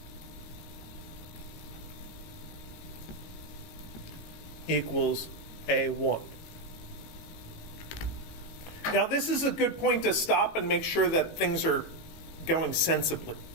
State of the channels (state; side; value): late; right; 18 ms